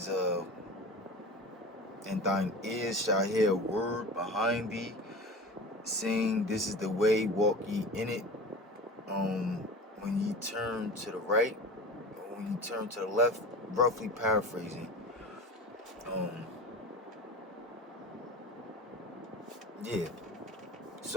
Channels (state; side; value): normal; both; correlation 0.33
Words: and thine ears shall hear a word behind thee, saying, this is the way, walk ye in it. When ye turn to the right, or when you turn to the left, roughly paraphrasing. Yeah.